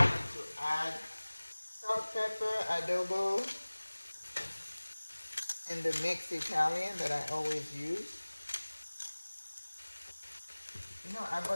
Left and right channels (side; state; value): both; inverted; correlation -1.00